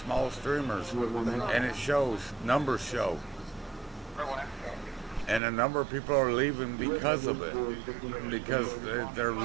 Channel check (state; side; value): drops out; left; at 5.4 s